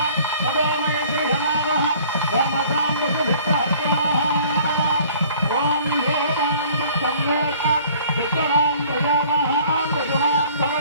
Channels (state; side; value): inverted; both; correlation -0.53